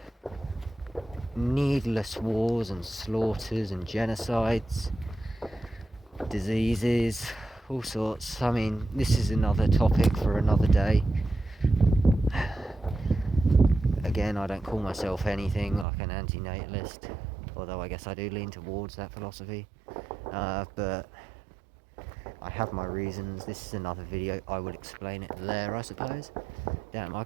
needless wars and slaughters and genocides, diseases, all sorts. I mean, this is another topic for another day. Again, I don't call myself anything like an anti-natalist, although I guess I do lean towards that philosophy. But I have my reasons. This is another video. I will explain it there, I suppose. Damn, I've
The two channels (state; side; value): drops out; left; at 15.9 s